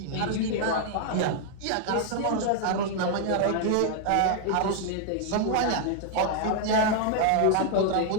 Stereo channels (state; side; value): different; both; correlation 0.00